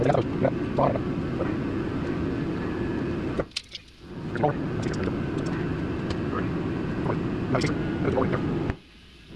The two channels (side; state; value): both; identical; correlation 1.00